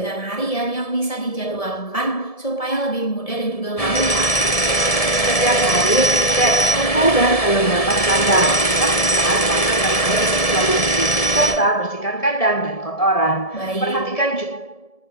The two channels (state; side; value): late; right; 1.7 ms